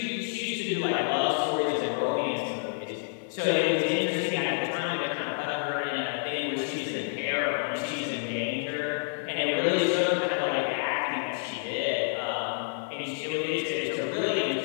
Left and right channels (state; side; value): silent; right; digital silence